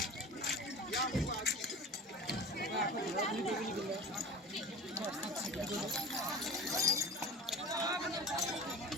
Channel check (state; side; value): normal; both; correlation 0.35